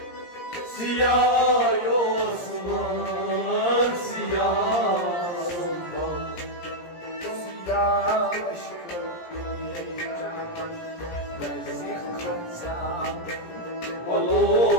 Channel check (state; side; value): late; right; 17 ms